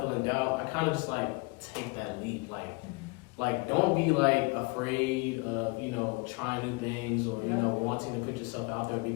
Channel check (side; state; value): right; quieter; 27.9 dB